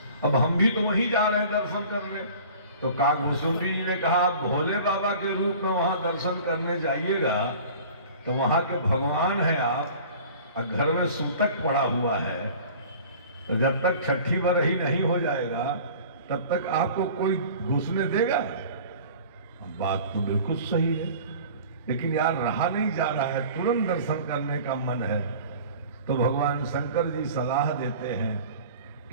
अब हम भी तो वहीं जा रहे हैं दर्शन करने। तो काकभूसुंडी जी ने कहा, आप भोले बाबा के रूप में वहां दर्शन करने जाइएगा तो वहां के भगवान है आप, और घर में सूतक पड़ा हुआ है, तो जब तक छठी बरही नहीं हो जाएगा तब तक आपको कोई घुसने देगा? बात तो बिल्कुल सही है, लेकिन यार रहा नहीं जा रहा है, तुरंत दर्शन करने का मन है। तो भगवान शंकर जी सलाह देते हैं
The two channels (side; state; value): both; inverted; correlation -0.44